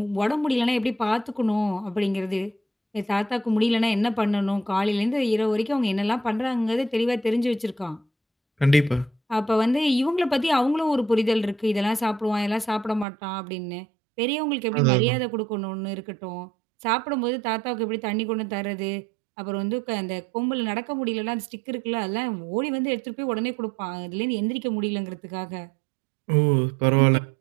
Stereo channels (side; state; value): left; drops out; at 13.1 s